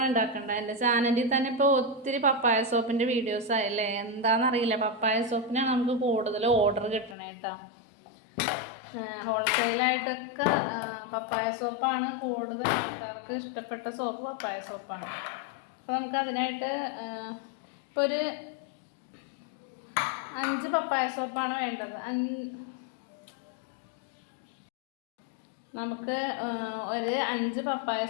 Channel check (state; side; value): drops out; right; at 7.2 s